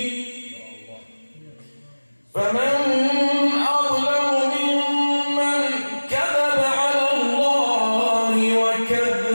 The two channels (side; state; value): both; inverted; correlation -1.00